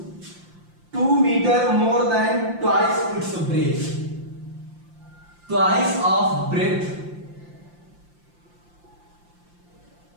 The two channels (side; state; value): left; late; 5.7 ms